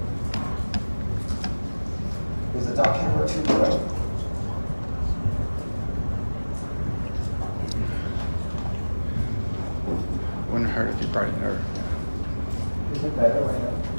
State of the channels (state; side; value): inverted; both; correlation -1.00